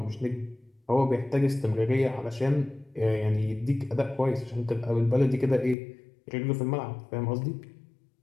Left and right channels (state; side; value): drops out; right; at 5.8 s